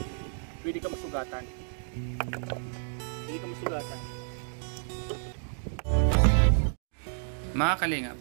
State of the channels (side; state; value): left; silent; digital silence